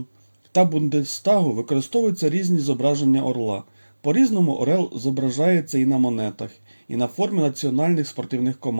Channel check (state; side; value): inverted; both; correlation -1.00